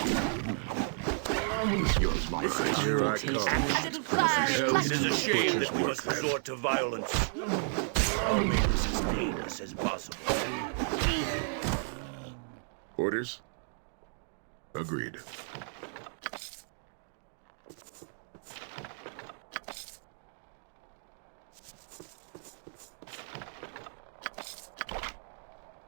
Yours, my friend. Here I come. A little fire. It is a shame that we must resort to violence. I'll make this as painless as possible. Orders? Agreed.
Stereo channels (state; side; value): silent; left; 55 dB below the other